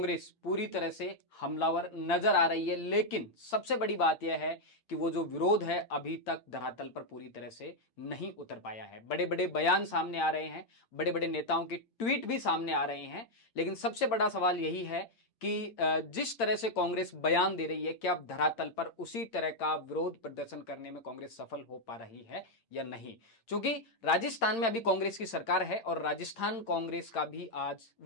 पूरी तरह से हमलावर नजर आ रही है। लेकिन सबसे बड़ी बात यह है कि वो जो विरोध है अभी तक धरातल पर पूरी तरह से नहीं उतर पाया है। बड़े बड़े बयान सामने आ रहे हैं, बड़े बड़े नेताओं के ट्वीट भी सामने आ रहे हैं, लेकिन सबसे बड़ा सवाल यही है कि जिस तरह से कांग्रेस बयान दे रही है, क्या अब धरातल पर उसी तरह का विरोध प्रदर्शन करने में कांग्रेस सफल हो पा रही है या नहीं। क्योंकि राजस्थान में अभी कांग्रेस की सरकार है और राजस्थान कांग्रेस का भी आज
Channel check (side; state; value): right; late; 8.8 ms